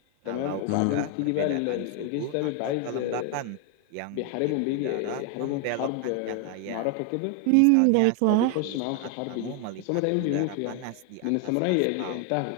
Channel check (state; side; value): different; both; correlation 0.01